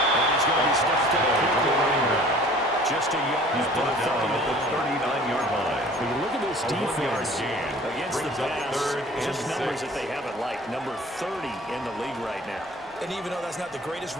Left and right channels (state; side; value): normal; both; correlation 0.48